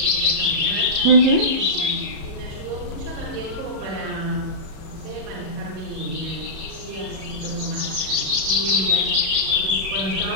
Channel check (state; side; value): late; left; 37 ms